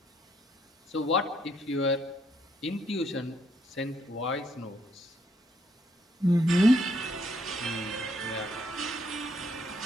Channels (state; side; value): normal; both; correlation 0.71